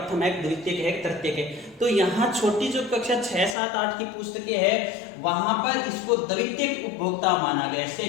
है, द्वितीयक है, तृतीयक है। तो यहाँ छोटी जो कक्षा 6, 7, 8 की पुस्तकें है वहां पर इसको द्वितीयक उपभोक्ता माना गया है,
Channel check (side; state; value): right; drops out; at 3.6 s